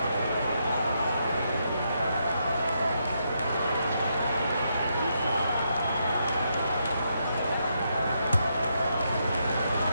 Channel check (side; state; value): both; inverted; correlation -0.80